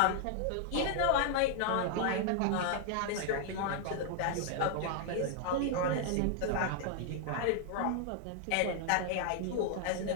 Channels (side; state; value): both; different; correlation 0.00